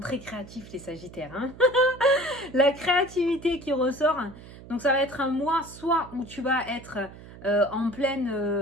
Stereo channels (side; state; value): right; noise; hum, 17 dB below the sound